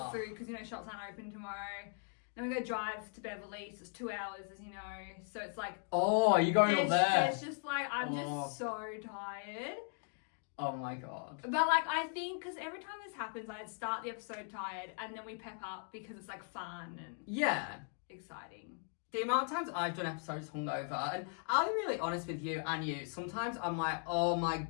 the food because shops aren't open tomorrow. Then we go drive to Beverly, so it's 2 hours, as you know. So it's oh, you're going up there. It's just I'm just so tired. Oh my God. But I think because every time this happens, I start the episode tired and then we pep up because it's fun and exciting. The amount of times I've done episodes hungover, and I'll be really honest with you and you, sometimes I'm like, oh my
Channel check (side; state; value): right; silent; 52 dB below the other